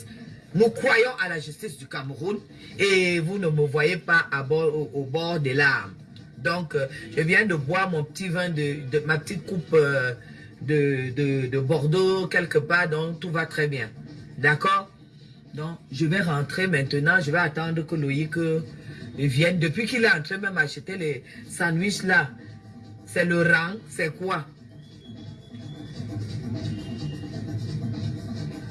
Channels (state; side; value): identical; both; correlation 1.00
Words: Nous croyons à la justice du Cameroun et vous ne me voyez pas au bord des larmes. Donc, je viens de boire mon petit vin, ma petite coupe de Bordeaux quelque part, donc tout va très bien. D'accord? Donc, je vais rentrer maintenant, je vais attendre que Loïc vienne. Depuis qu'il est entré même acheter les sandwichs là, c'est le rang, c'est quoi?